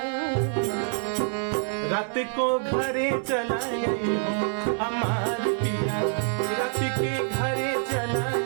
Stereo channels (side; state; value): left; silent; 59 dB below the other